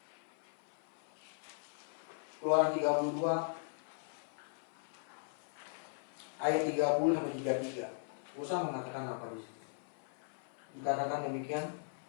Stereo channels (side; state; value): right; silent; 52 dB below the other